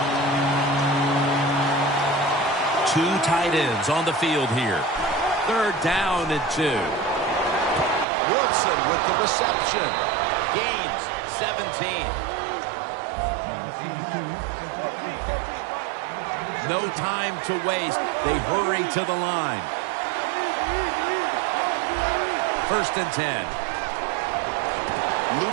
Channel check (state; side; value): drops out; left; at 8.1 s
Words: Two tight ends on the field here. Third down and 2. Wilson with the reception. Gains 17. No time to waste. They hurry to the line. First and 10.